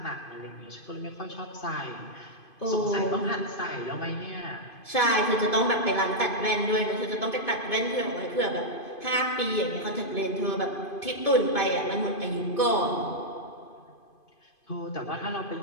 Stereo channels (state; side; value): late; right; 2.5 ms